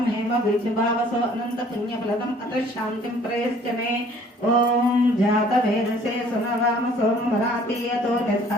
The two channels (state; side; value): normal; both; correlation 0.56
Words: हेम बीजभावसो अनंत पुण्यफलदम् अत्र शान्तिं प्रयश्च मे ओम जात वेदसे सुनवाम सोमरातीयतो